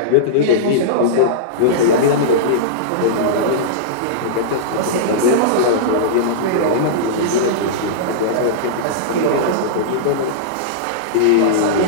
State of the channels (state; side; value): different; both; correlation -0.03